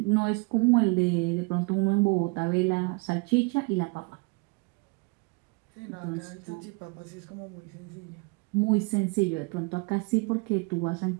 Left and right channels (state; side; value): quieter; left; 30.3 dB